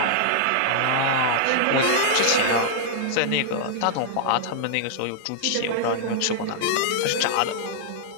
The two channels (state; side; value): different; both; correlation -0.01